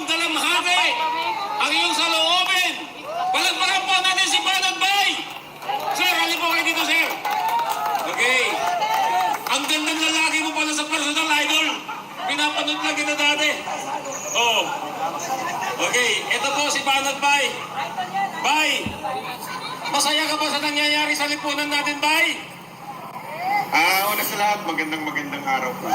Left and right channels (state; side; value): identical; both; correlation 1.00